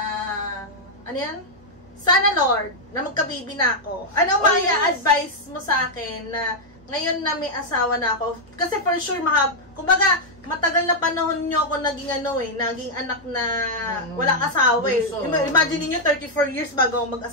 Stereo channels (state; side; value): normal; both; correlation -0.03